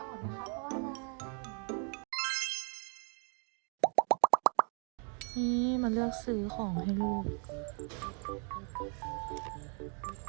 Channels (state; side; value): quieter; left; 38.0 dB